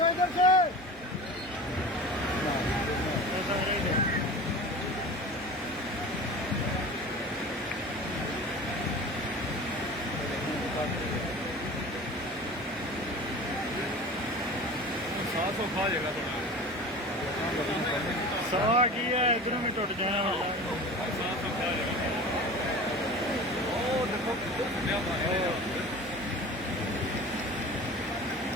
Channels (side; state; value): both; normal; correlation 0.36